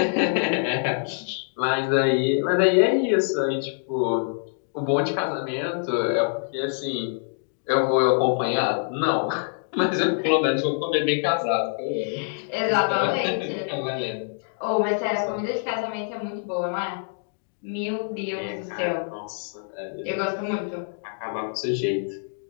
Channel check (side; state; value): right; silent; digital silence